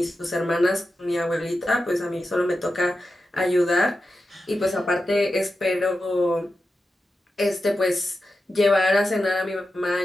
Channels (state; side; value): normal; both; correlation 0.91